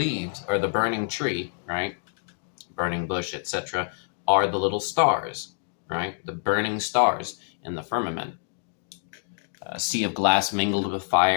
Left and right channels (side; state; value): right; silent; digital silence